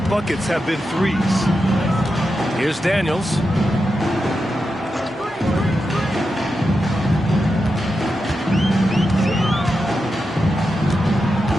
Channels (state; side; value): normal; both; correlation 0.88